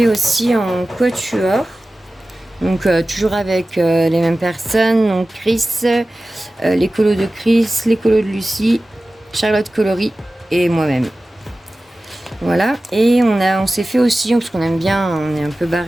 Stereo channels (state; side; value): normal; both; correlation 0.96